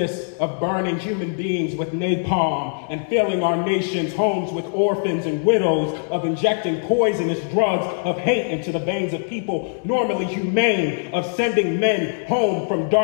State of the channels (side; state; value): right; silent; digital silence